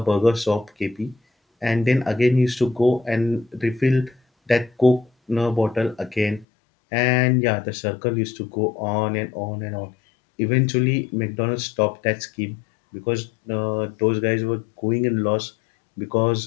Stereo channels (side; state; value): right; drops out; at 6.5 s